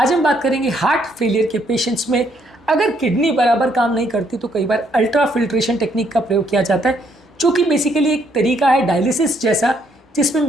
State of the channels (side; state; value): both; normal; correlation 0.70